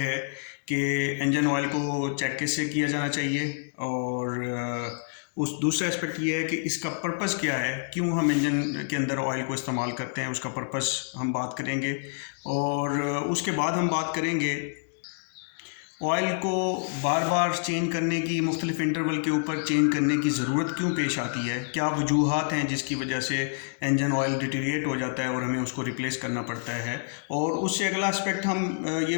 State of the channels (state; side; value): silent; right; digital silence